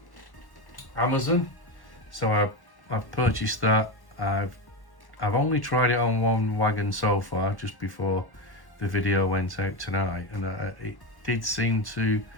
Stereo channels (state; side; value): late; right; 1.1 ms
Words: Amazon. So I've purchased that. I've only tried it on one wagon so far, just before the video went out tonight, and it did seem to